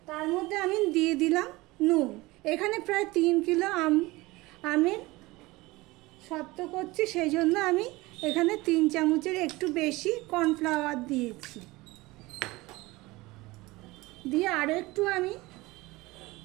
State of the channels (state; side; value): quieter; left; 21.1 dB